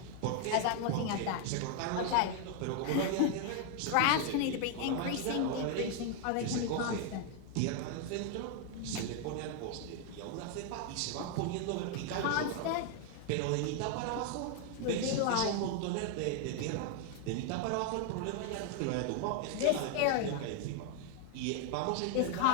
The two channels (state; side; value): different; both; correlation 0.00